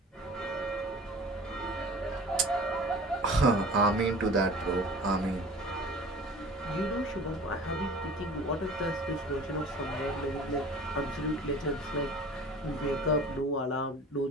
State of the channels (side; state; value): both; normal; correlation 0.42